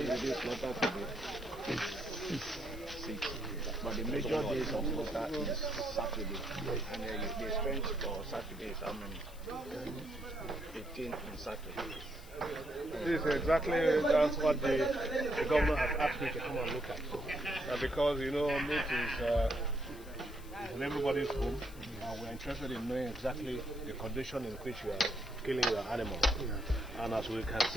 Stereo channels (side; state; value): left; noise; hiss, 21 dB below the sound